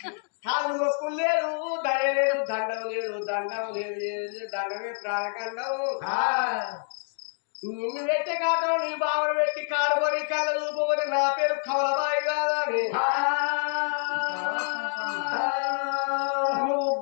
కాళ్ళు మొక్కులు లేదు దయ లేదు దండం లేదు దండమే ప్రాణకండం నిన్ను పెట్టే కాదు నీ బావను పెట్టి కాడుకొని కళ్ళ చూపబోతే నా పేరు కమలబాయి కాదా అని నువ్వు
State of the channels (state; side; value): silent; right; digital silence